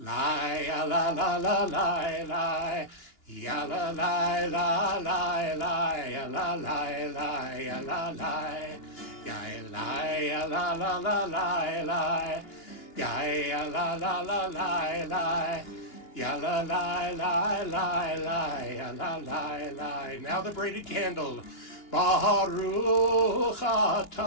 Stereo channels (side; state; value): right; late; 2.8 ms